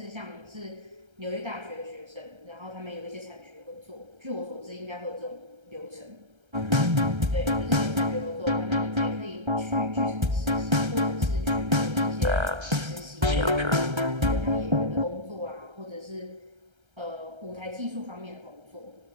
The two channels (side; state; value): left; late; 1.3 ms